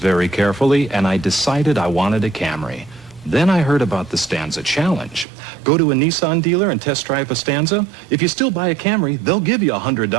carefully, and I decided I wanted a Camry. Then I heard about the Stanza Challenge. Go to a Nissan dealer and test drive a Stanza. If you still buy a Camry, they'll give you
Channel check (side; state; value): left; drops out; at 5.2 s